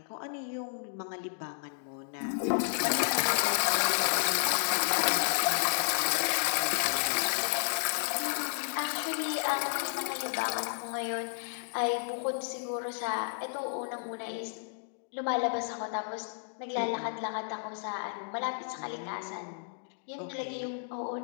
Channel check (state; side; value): silent; right; digital silence